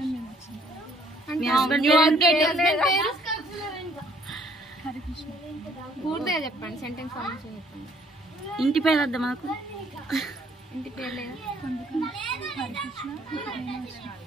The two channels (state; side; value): normal; both; correlation 0.62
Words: పూర్తిగా చెప్పండి, సెంటెన్స్ ఫార్మేషన్ చెప్పండి. ఇంటి పేరు వద్దా మాకు? ఇంటి పేరు లేదా?